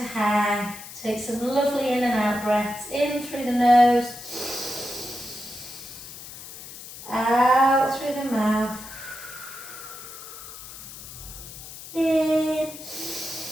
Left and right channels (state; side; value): noise; left; hiss, 13 dB below the sound